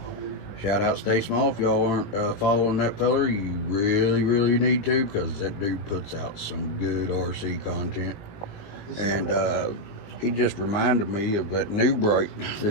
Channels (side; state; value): right; late; 20 ms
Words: Shout out Stay Small. If y'all aren't following that feller, you really need to, because that dude puts out some good RC content. And he just reminded me of that new Bright